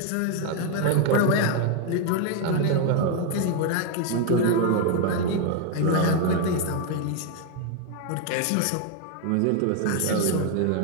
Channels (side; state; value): both; different; correlation 0.01